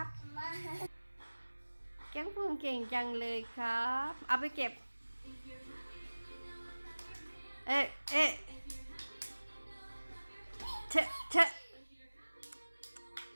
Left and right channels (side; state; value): both; inverted; correlation -1.00